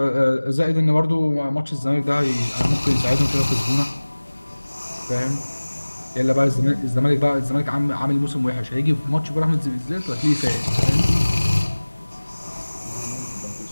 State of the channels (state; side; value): inverted; both; correlation -1.00